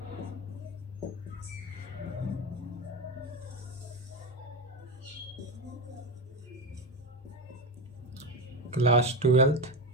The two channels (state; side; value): normal; both; correlation 0.18